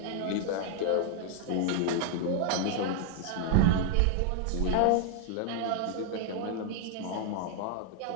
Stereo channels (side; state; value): both; different; correlation 0.00